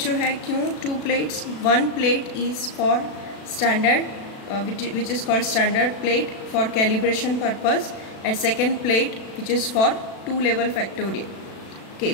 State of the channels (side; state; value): right; late; 36 ms